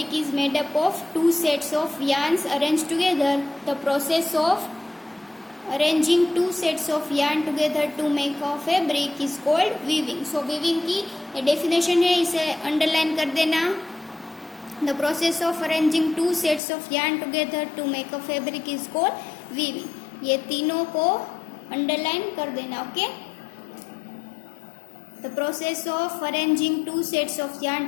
is made up of two sets of yarns arranged together. The process of arranging two sets of yarn together to make a fabric is called weaving. So weaving की definition है, इसे underline कर देना. The process of arranging two sets of yarn together to make a fabric is called weaving. ये तीनों को underline कर देना, okay? The process of arranging two sets of yarn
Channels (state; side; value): drops out; right; at 16.6 s